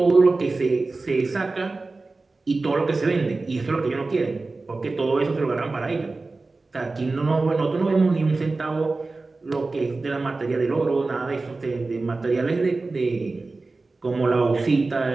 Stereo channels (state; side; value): quieter; left; 3.5 dB